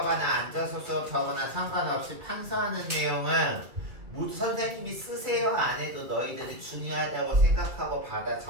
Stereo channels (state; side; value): late; left; 2.3 ms